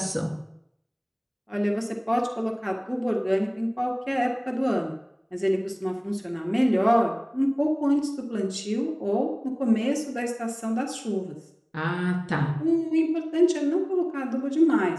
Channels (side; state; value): both; identical; correlation 1.00